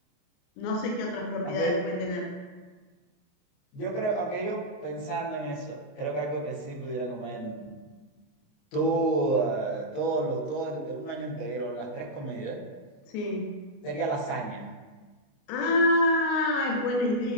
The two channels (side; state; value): right; late; 28 ms